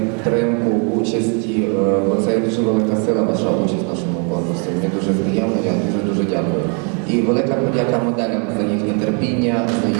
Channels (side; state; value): left; quieter; 37.7 dB